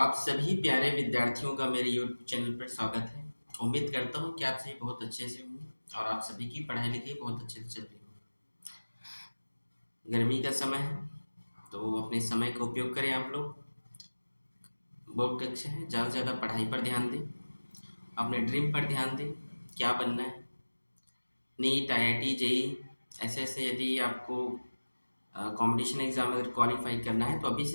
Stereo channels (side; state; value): both; inverted; correlation -1.00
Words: सभी प्यारे विद्यार्थियों का मेरे YouTube चैनल पर स्वागत है। उम्मीद करता हूँ कि आप सभी बहुत अच्छे से होंगे और आप सभी की पढ़ाई लिखाई बहुत अच्छे से चल रही हो। गर्मी का समय है तो अपने समय का उपयोग करें। आप लोग बोर्ड कक्षा है, ज़्यादा से ज़्यादा पढ़ाई पर ध्यान दें, अपने ड्रीम पर ध्यान दें। क्या बनना है, नीट, IIT, JEE ऐसे यदि आपको कंपटीशन एग्जाम अगर क्वालिफाई करना है तो अभी